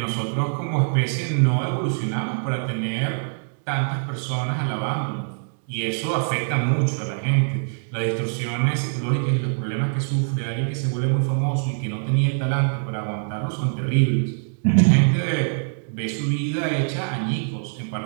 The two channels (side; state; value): left; silent; digital silence